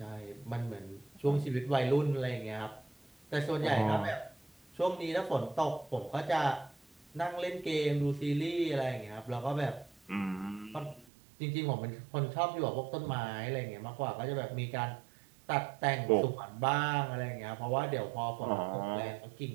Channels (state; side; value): drops out; left; at 11.1 s